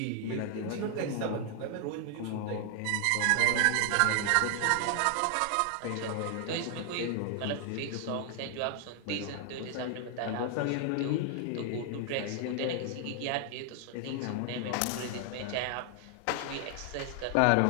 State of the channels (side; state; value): both; different; correlation 0.00